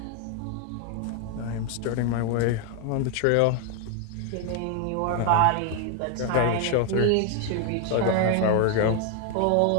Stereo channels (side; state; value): both; different; correlation 0.01